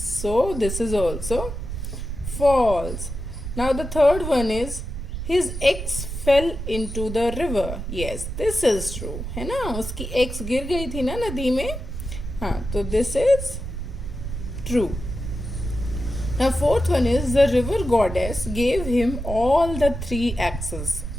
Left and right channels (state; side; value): noise; right; rumble, 6 dB below the sound